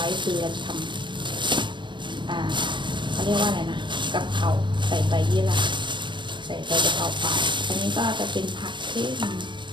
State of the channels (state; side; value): late; left; 0.23 ms